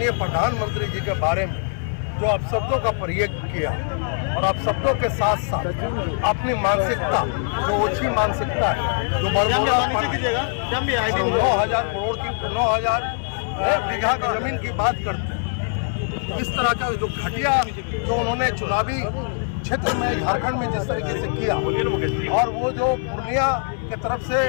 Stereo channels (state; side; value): silent; right; digital silence